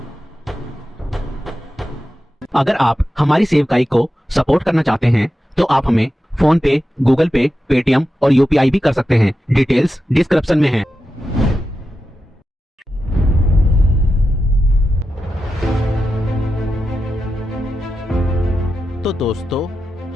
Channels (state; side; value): normal; both; correlation 0.90